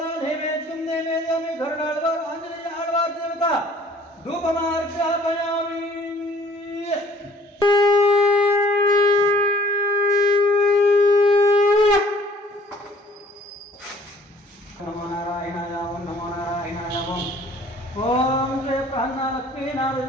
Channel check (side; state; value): both; normal; correlation 0.56